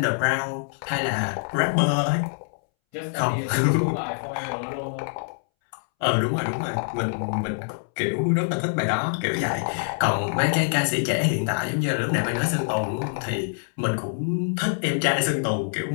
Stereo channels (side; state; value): right; silent; 62 dB below the other